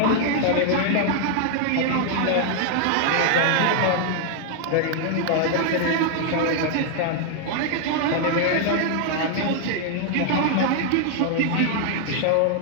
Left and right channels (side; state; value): both; different; correlation 0.00